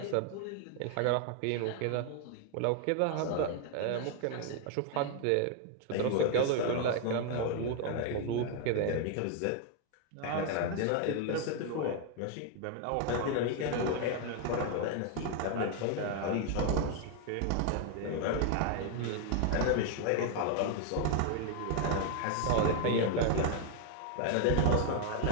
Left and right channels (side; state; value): both; different; correlation 0.00